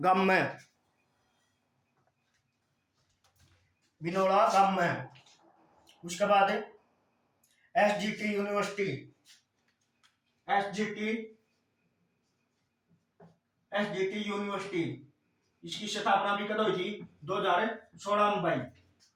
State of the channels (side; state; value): both; identical; correlation 1.00